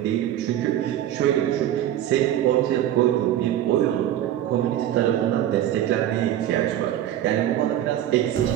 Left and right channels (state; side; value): quieter; left; 11.9 dB